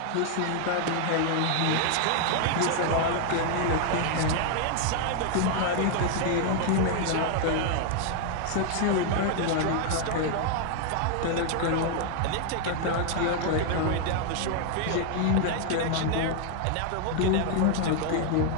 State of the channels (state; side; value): different; both; correlation 0.00